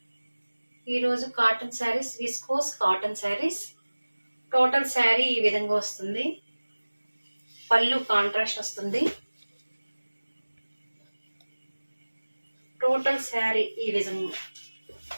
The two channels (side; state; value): both; inverted; correlation -1.00